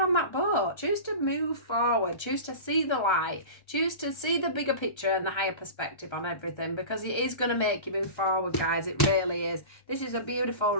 that boat, choose to move forward, choose to see the light, choose to see the bigger picture and the higher perspective on everything, because it is going to make you move forward, guys. It really is. This is a beautiful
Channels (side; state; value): right; late; 1.3 ms